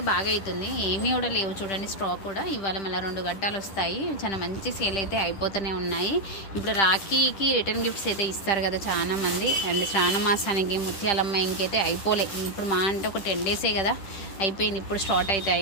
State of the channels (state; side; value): late; right; 10 ms